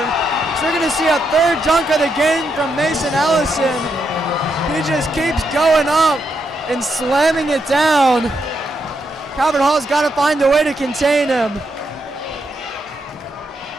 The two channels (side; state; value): both; normal; correlation 0.81